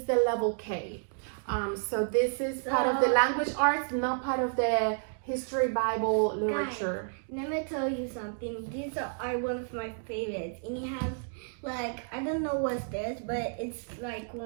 the level K. So this is part of the language arts, not part of the history Bible literature. Guys, let me tell you something. These are one of my favorites, and it has I don't know what's this, but it's like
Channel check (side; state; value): left; silent; digital silence